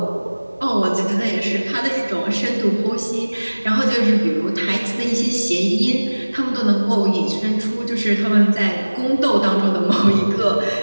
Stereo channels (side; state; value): both; inverted; correlation -1.00